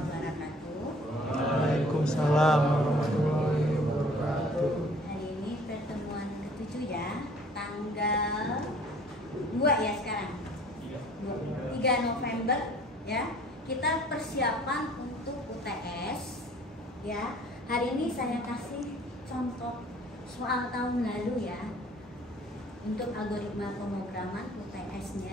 Waalaikumsalam warahmatullahi wabarakatuh. Hari ini pertemuan ke-7 ya, tanggal 2 ya sekarang 3 November ya. Kita persiapan untuk UTS ya. Hari ini saya kasih contoh soal tahun lalu ya, untuk algoritma pemrograman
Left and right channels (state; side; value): normal; both; correlation 0.53